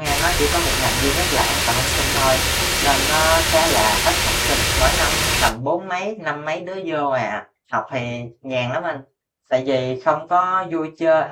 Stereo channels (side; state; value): both; identical; correlation 1.00